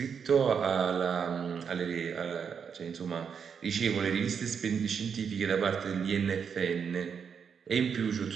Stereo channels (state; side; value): quieter; left; 6.8 dB